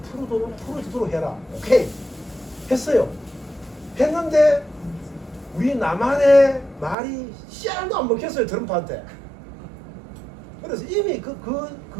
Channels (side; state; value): left; drops out; at 7.0 s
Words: 풀어주도록 해라. 오케이. 했어요. 했는데 우리 남한의 말이 씨알도 안 먹혔어요. 트럼프한테. 그래서 이미